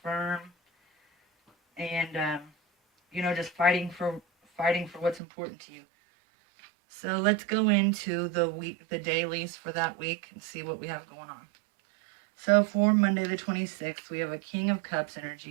firm, and you know, just fighting for what's important to you. So let's go into the dailies for that week and see what we have going on. So for Monday the 26th, we have a King of Cups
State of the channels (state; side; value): drops out; left; at 5.2 s